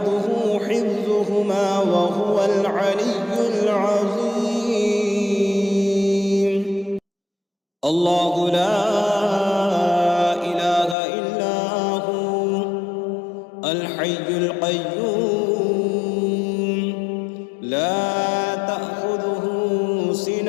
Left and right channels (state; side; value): drops out; right; at 11.0 s